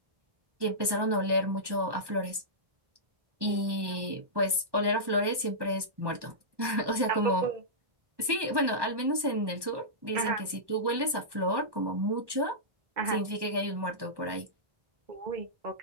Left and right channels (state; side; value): late; left; 1.2 ms